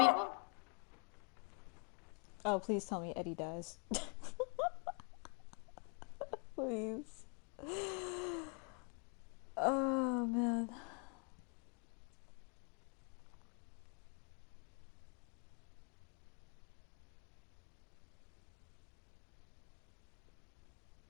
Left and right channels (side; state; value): right; quieter; 38.2 dB